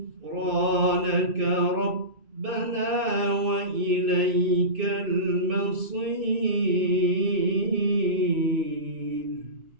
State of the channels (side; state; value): left; late; 2.5 ms